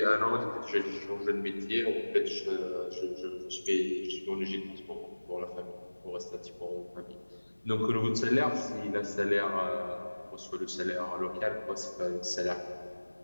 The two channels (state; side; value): inverted; both; correlation -1.00